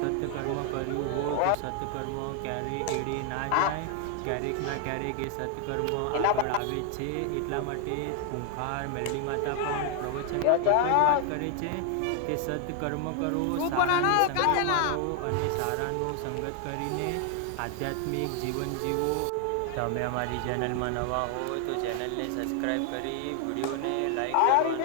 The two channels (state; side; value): different; both; correlation 0.00